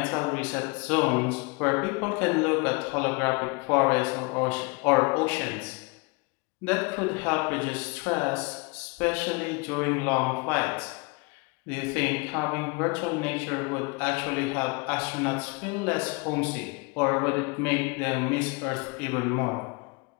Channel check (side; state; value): right; quieter; 29.4 dB